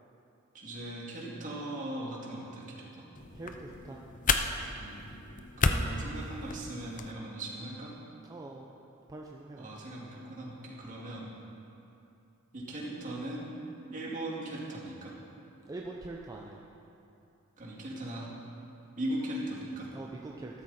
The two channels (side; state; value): both; normal; correlation 0.47